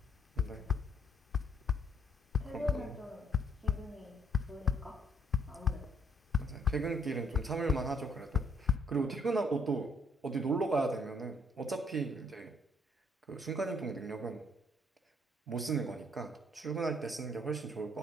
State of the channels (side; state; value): both; normal; correlation 0.67